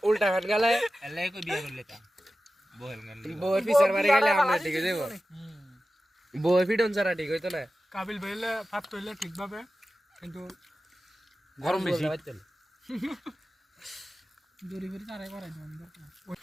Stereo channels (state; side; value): normal; both; correlation 0.94